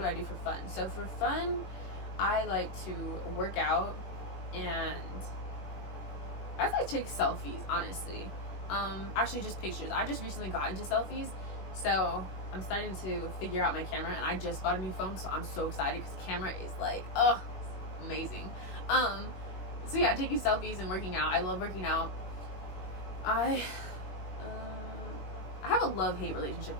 I do for fun? So for fun, I like to work out, and I like to take selfies, honestly. Actually just pictures. I just recently got into selfies, so I'm starting to figure out my camera, and I just bought a new phone, so I'm so excited because the camera is like, it's amazing. So yeah, taking selfies and working out. I love working out. I have a love-hate relationship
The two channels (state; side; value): late; right; 21 ms